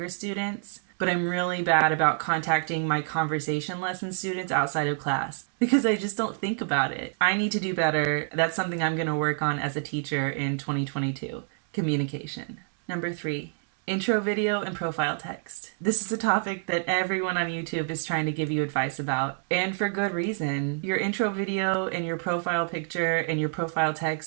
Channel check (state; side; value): silent; left; 60 dB below the other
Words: students, but I'm really bad about contacting my conversation lesson students outside of class because I just don't think about it. I need to do better. That's something I'm going to work on as a teacher in 2022. Communication. Number 3, intro video and profile text. This is a topic that everyone on YouTube is trying to give you advice about, and for good reason. Your intro video and your profile picture and your profile